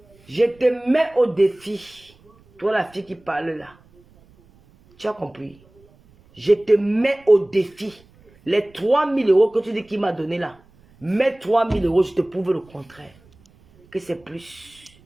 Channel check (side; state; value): right; noise; rumble, 29 dB below the sound